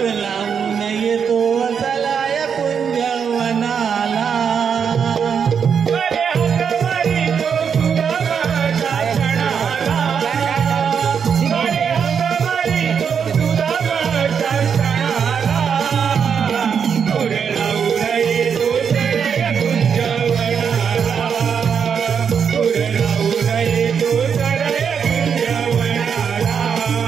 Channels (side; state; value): left; quieter; 7.0 dB